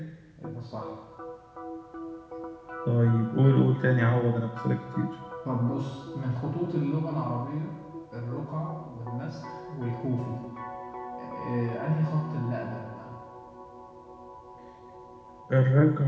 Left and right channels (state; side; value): identical; both; correlation 1.00